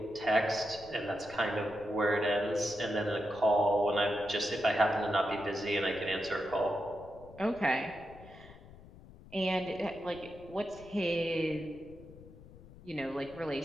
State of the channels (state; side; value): noise; left; rumble, 20 dB below the sound